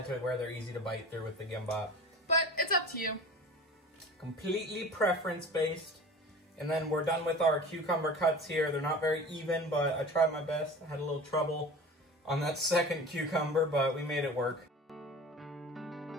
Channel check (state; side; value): normal; both; correlation 0.37